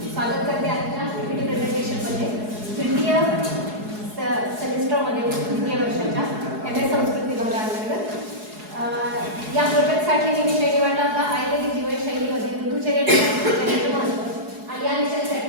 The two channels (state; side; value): late; left; 4.7 ms